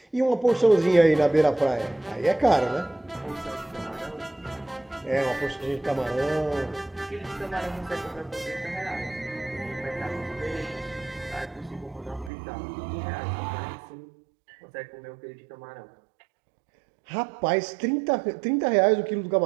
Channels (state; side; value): drops out; left; at 12.3 s